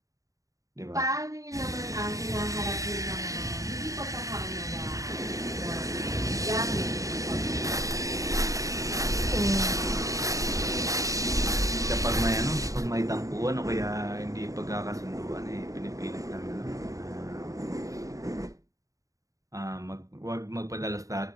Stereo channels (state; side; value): late; left; 0.16 ms